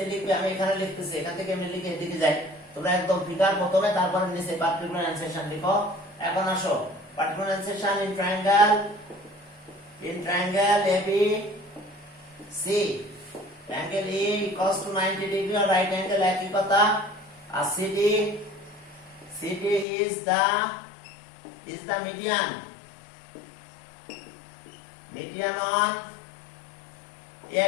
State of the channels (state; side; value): drops out; right; at 19.9 s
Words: লিখবে আমি এখানে লিখতেছি এখান থেকে আমি লিখে এদিকে যাই তোমরা একদম ফিগার প্রথমে তারপরে নিচে পার্টিকুলার এনসেশন লিখো এখন আসো particular enunciation in triangle AB C angle E equals to 90 degree or right angle একই কথা আর CD is the median on